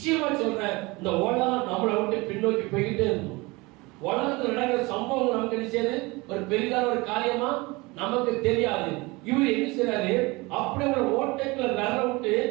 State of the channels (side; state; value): left; quieter; 24.0 dB